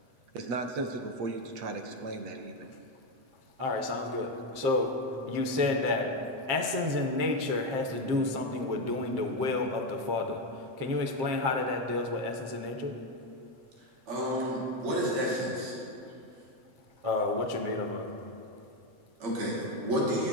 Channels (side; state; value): left; late; 7.5 ms